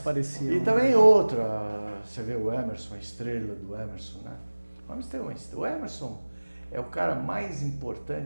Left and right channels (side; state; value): both; inverted; correlation -1.00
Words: Pareciam. E também outra, você vê o Emerson, a estrela do Emerson, né? O Emerson é o cara mais